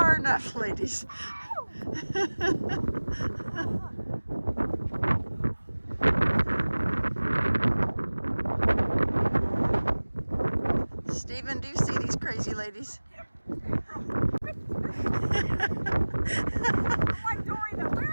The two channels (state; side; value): inverted; both; correlation -1.00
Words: enough, ladies. Stephen, do you see these crazy ladies? I'm like Dory, though.